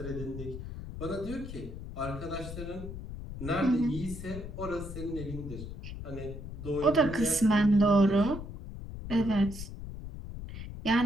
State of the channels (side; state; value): left; noise; rumble, 9 dB below the sound